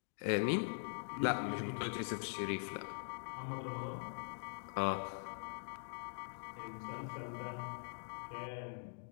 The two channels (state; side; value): silent; right; digital silence